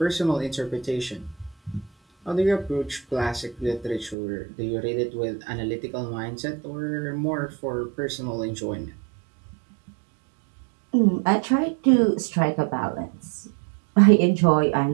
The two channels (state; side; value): drops out; left; at 4.2 s